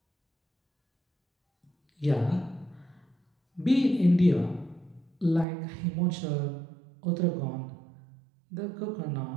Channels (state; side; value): drops out; left; at 5.5 s